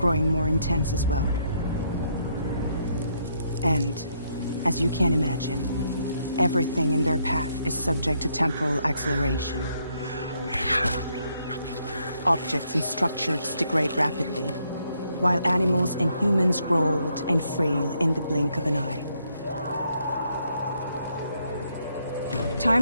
more intense as well. And, as you can imagine, everything in their path is subject to temporal acceleration. Objects and structures degrade rapidly, while animals and humans grow old and frail in the blink of an eye.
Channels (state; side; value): inverted; both; correlation -0.74